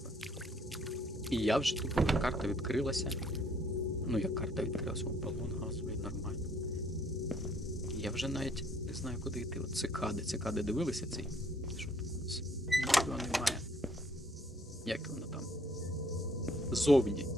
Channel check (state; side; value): normal; both; correlation 0.63